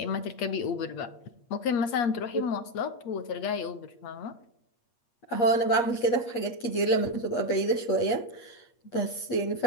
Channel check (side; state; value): right; late; 8.5 ms